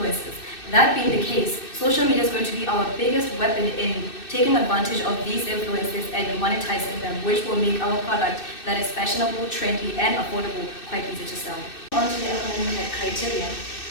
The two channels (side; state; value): right; late; 2.6 ms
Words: That being the case, social media is going to be our biggest weapon in taking advantage of these influences and monetizing them, which will make our product that is fashionable, trendy, and affordable quite easy to sell. On to the economic criteria.